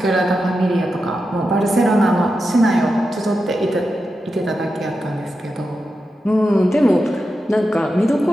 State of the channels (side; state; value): both; normal; correlation 0.89